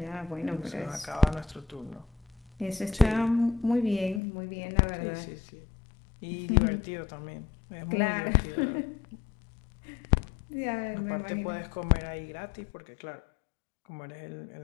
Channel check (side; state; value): right; drops out; at 4.2 s